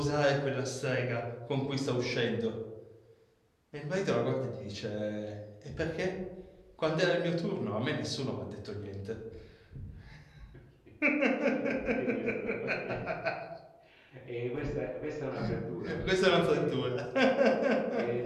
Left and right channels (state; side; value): identical; both; correlation 1.00